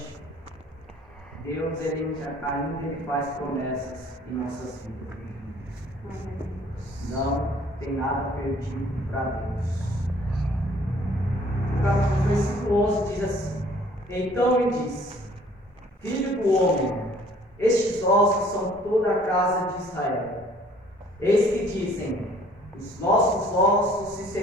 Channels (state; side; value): normal; both; correlation 0.56